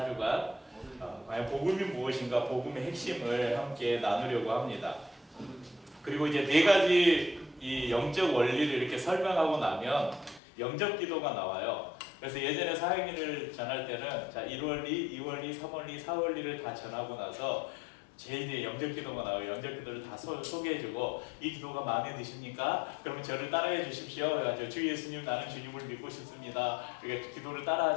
과연 복음이 무엇인가, 복음의 핵심을 함께 나누려고 합니다. 그리고 이제 네 가지 이 영적 원리를 이렇게 설명하고 나면 영적 기도가 나와요. 그래서 예전에 사형리를 전할 때는 1원리, 2원리, 3원리, 4원리를 다 전하고 나서 제일 뒤에 영적 기도가 나와요. 영적 기도를 다 소개해주고, 이 기도가 마음에 드십니까? 그러면 저를 따라해 주십시오. 그래가지고 주 예수님, 나는 주님을 믿고 싶습니다. 이렇게 기도를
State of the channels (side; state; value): right; drops out; at 10.4 s